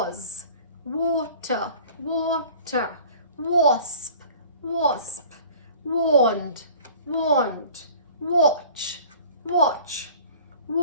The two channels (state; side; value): inverted; both; correlation -0.47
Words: Water, water. Wasp, wasp. Warned, warned. Watch, watch.